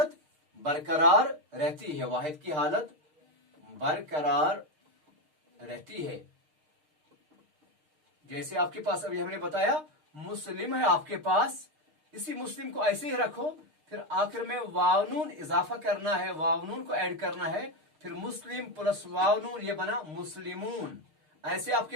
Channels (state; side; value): late; left; 6.5 ms